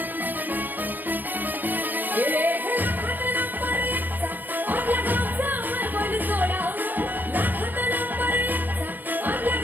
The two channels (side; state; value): left; late; 0.091 ms